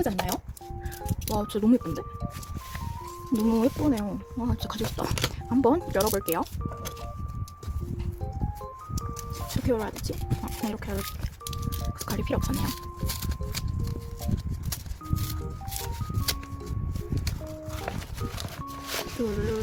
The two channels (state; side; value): identical; both; correlation 1.00